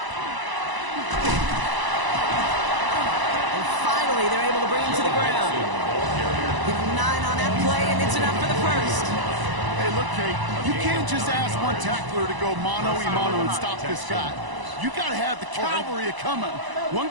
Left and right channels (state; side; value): late; left; 1.0 ms